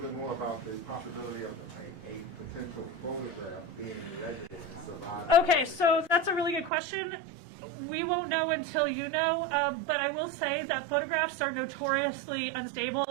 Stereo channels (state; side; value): drops out; left; at 6.7 s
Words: more about the possibility of a potential photograph being in residence of Okay, so that's a really good question. We won't know until you know, but I will say that photographs are notoriously unstable